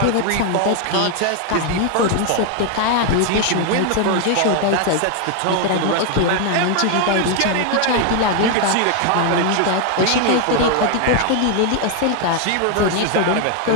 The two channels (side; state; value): both; different; correlation 0.01